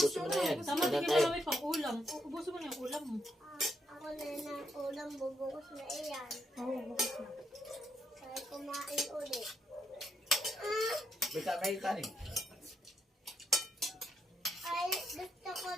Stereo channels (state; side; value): normal; both; correlation 0.78